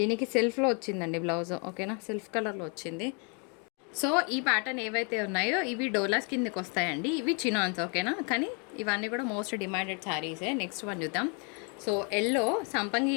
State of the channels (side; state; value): right; quieter; 36.4 dB